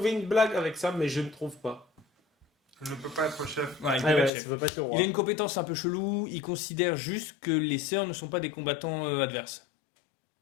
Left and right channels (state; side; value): drops out; right; at 4.3 s